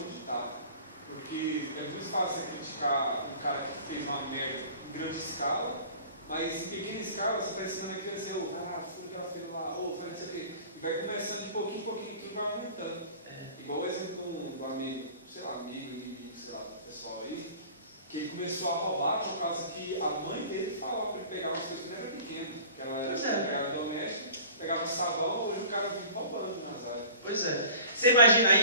está. Porque é muito fácil você criticar um cara que fez uma merda em grande escala, mas em pequena escala você está ensinando a criança, fura que ela fez lá, faz isso aqui. E vai começando de pouquinho em pouquinho, tudo vai aumentando. Igual o exemplo do amigo, sei lá, do pessoal aí, que ele começou a roubar por causa que a mãe dele falava para ele pegar umas coisas que não era pequena, que ela era empregada doméstica, pegava sabão, hoje o cara vive roubando nas áreas. Pois é. Você imagina,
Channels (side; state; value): both; inverted; correlation -0.44